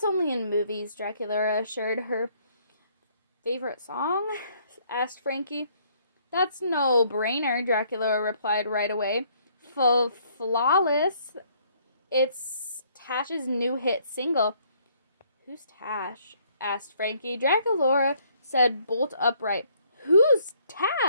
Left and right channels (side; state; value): both; inverted; correlation -0.65